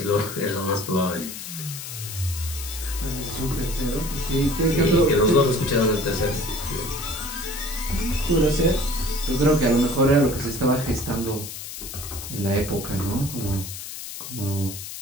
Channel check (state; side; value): noise; left; hiss, 9 dB below the sound